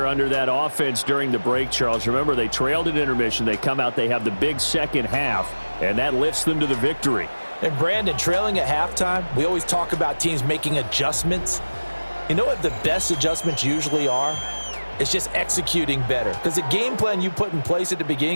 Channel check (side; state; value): both; inverted; correlation -1.00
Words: under that offense during the break, Charles. Remember, they trailed at intermission. They come out, they have the big second half, and that lifts them to the victory. And Brandon, trailing at halftime, we always talk about teams making adjustments. You know what the best adjustments usually are? It's just executing better. Because the game plan you put in place at the